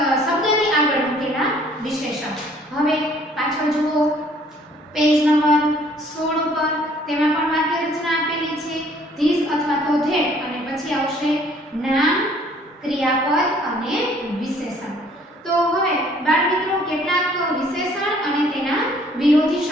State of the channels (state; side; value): normal; both; correlation 0.59